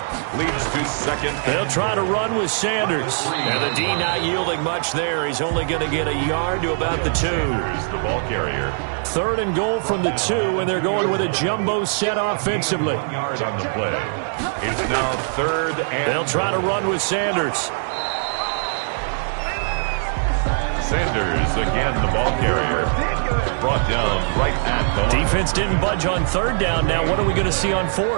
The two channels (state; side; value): silent; left; 64 dB below the other